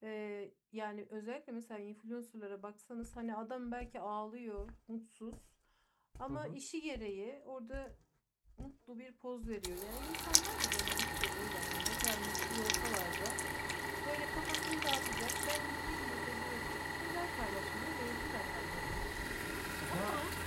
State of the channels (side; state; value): both; identical; correlation 1.00